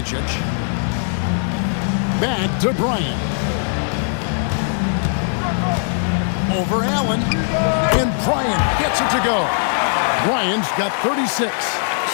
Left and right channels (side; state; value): right; silent; 66 dB below the other